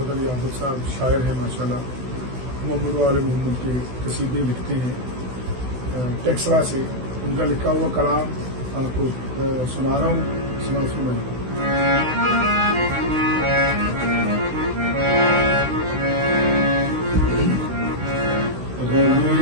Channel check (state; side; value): late; left; 16 ms